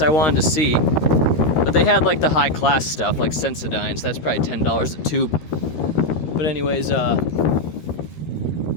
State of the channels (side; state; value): right; late; 13 ms